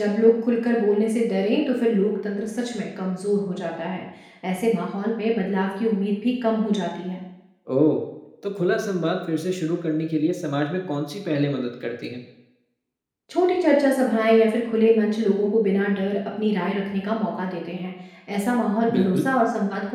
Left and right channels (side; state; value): both; identical; correlation 1.00